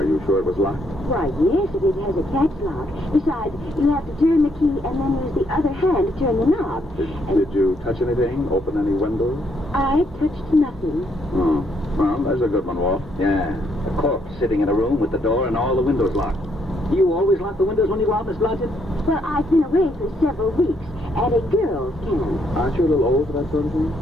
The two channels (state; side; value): normal; both; correlation 0.73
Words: you sure it was locked? Why, yes, it has a catch lock. Besides, you have to turn the key and then use the other hand to turn the knob. Did you touch anything? Open any windows? I touched nothing. Oh, well, there's a good one, Walt. Yeah, a corpse sitting in a room with the door and all the windows locked. You always lock the windows when you go out, Miss Blodgett? Well, I've been away for several weeks, and a girls can. Aren't you a little old for that sort of thing?